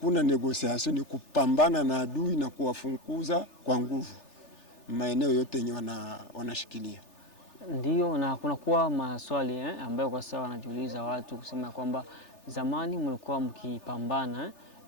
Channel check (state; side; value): late; right; 3.4 ms